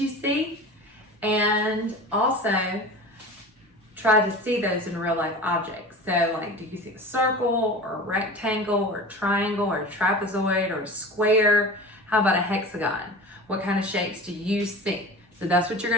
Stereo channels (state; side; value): normal; both; correlation 0.35